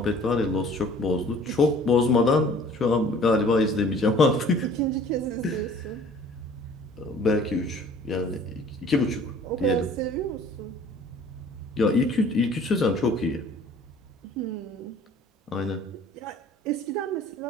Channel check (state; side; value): normal; both; correlation 0.51